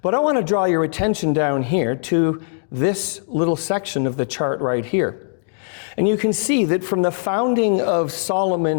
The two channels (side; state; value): right; silent; 65 dB below the other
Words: But I want to draw your attention down here to this little section of the chart right here. And you can see that from the founding of